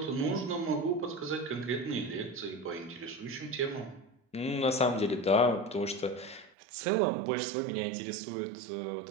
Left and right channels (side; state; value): left; drops out; at 6.5 s